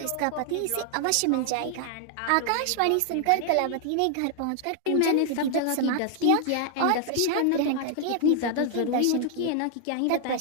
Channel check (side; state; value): both; different; correlation 0.00